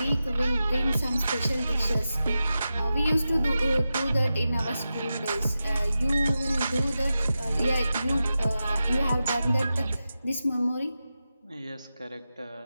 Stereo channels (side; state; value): both; inverted; correlation -0.92